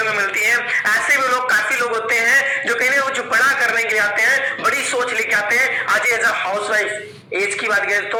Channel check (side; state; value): both; identical; correlation 1.00